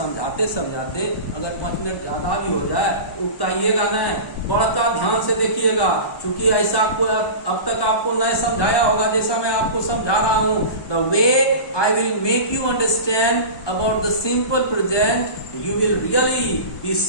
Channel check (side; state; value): right; late; 1.2 ms